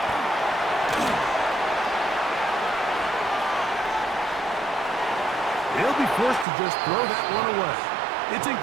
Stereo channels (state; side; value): drops out; left; at 6.5 s